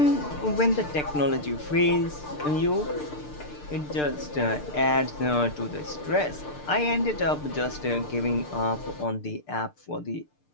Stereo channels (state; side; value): late; right; 6.7 ms